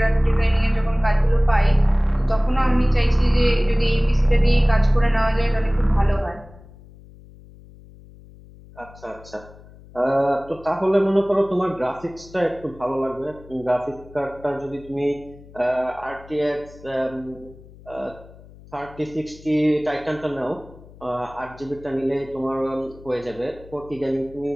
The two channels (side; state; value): left; noise; hum, 21 dB below the sound